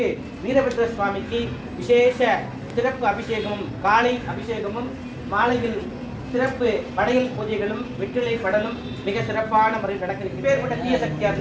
வீரபத்ர சுவாமிக்கு விசேஷ சிறப்பு அபிஷேகமும், காலை அபிஷேகமும், மாலையில் சிறப்பு படையல் பூஜைகளும், வெற்றிலை படலும் மிக சிறப்பான முறையில் நடக்கிறது. பேர்பட்ட தீய சக்தியா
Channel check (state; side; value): identical; both; correlation 1.00